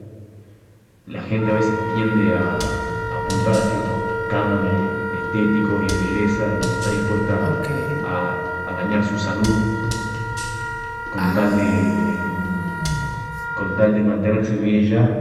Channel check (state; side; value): identical; both; correlation 1.00